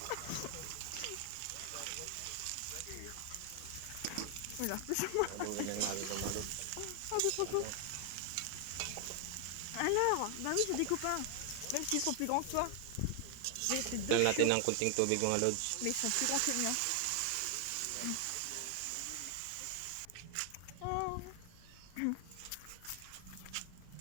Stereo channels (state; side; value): different; both; correlation 0.00